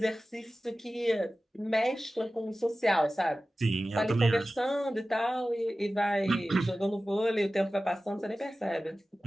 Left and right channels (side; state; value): both; normal; correlation 0.96